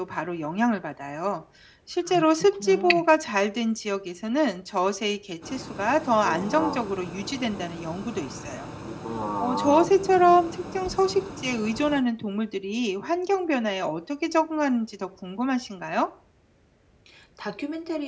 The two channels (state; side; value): identical; both; correlation 1.00